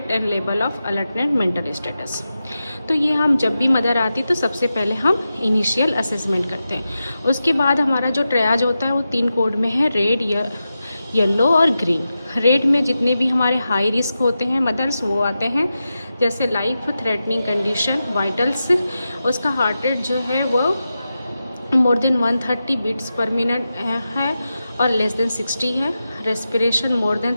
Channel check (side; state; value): both; inverted; correlation -0.91